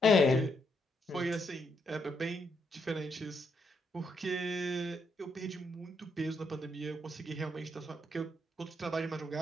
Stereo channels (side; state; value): both; normal; correlation 0.77